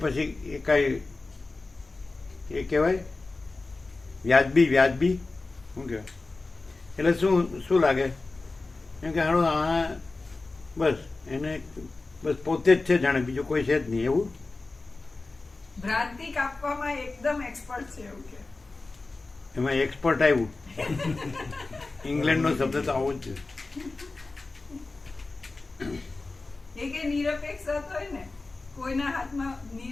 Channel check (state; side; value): quieter; right; 3.5 dB